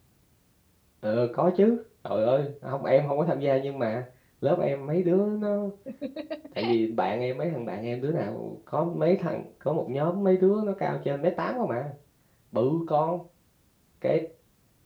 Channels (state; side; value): identical; both; correlation 1.00